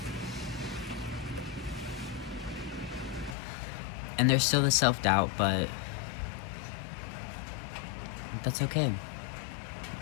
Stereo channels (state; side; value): drops out; right; at 3.4 s